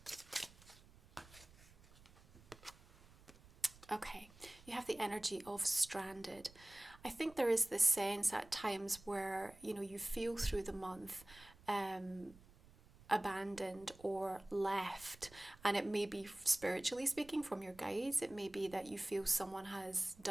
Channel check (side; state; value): right; noise; rumble, 23 dB below the sound